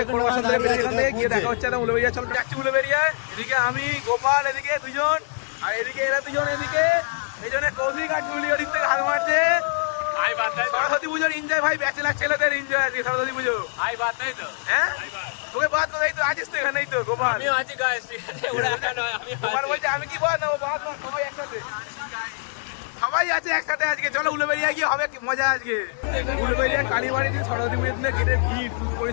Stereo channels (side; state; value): right; silent; 58 dB below the other